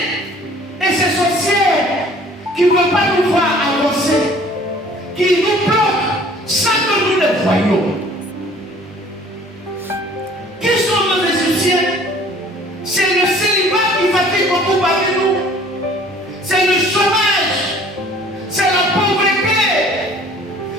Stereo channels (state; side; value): normal; both; correlation 0.53